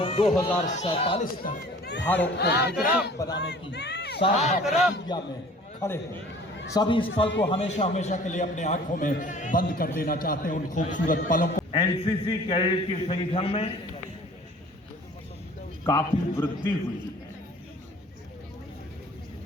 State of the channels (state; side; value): normal; both; correlation 0.49